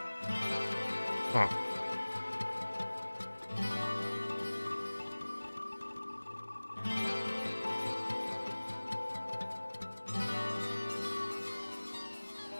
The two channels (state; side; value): inverted; both; correlation -1.00